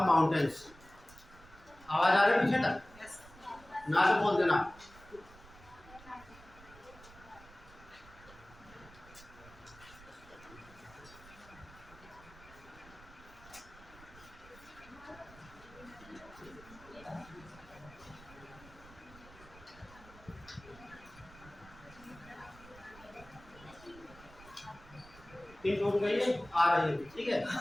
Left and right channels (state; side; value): noise; right; rumble, 21 dB below the sound